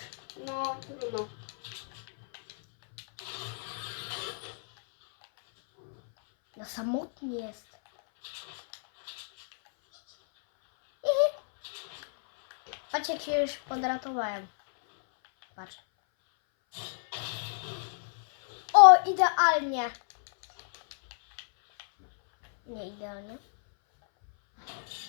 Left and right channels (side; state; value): right; silent; 58 dB below the other